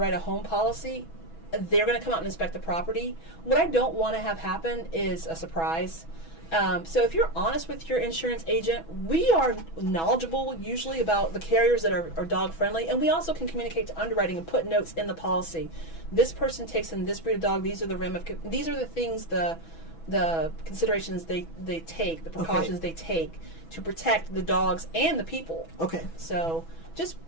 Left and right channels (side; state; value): right; late; 6.1 ms